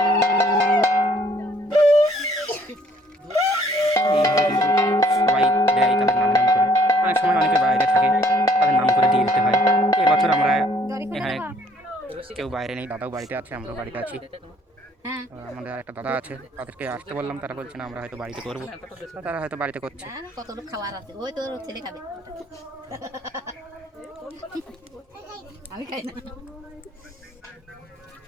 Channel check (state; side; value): normal; both; correlation 0.62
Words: সবাই দেয় তাদের নাম করে, অনেক সময় অনেকে বাইরে থাকে, তাদের নাম করে দিয়ে দিতে হয়। এবছর আমরা এখানে কেউ বাইরে নেই, দাদাও বাড়িতে আছে, আমরাও বাড়িতে আছি। আমাদের একটা দাদা আছে, তাদেরকে আসতে বললাম, তারা বলছে না আমরা হয়তো বাড়িতে করবো, তারা হয়তো বাড়িতে করছে। কত লোক খাবার আছে, ওই তোর ছেলে খাবে, আমি খাই না।